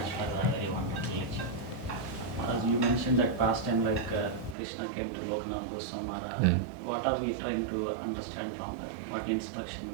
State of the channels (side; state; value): left; drops out; at 4.5 s